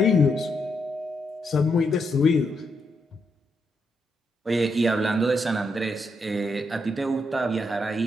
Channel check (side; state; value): both; normal; correlation 0.80